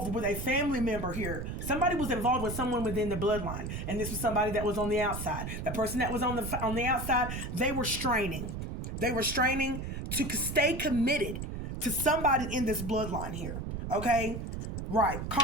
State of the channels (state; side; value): noise; right; rumble, 5 dB below the sound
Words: with a family member here. Somebody was involved with someone within the bloodline. And this was somebody that was on the outside. The person that was on the outside, they were straining. They were straining to stay committed to somebody in this bloodline here. Okay? Right.